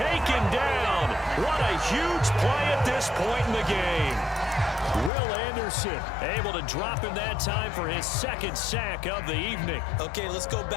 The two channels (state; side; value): drops out; right; at 5.1 s